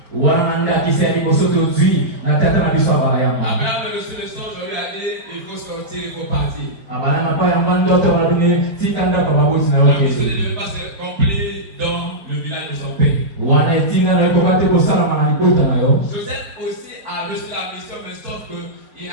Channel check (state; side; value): late; left; 5.0 ms